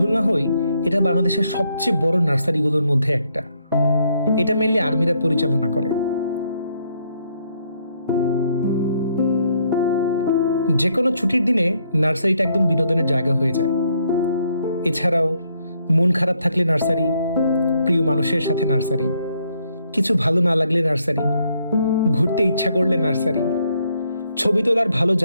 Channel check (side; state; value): both; inverted; correlation -0.73